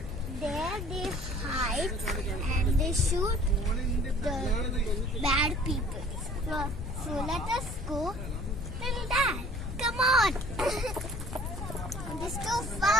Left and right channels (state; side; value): noise; left; rumble, 7 dB below the sound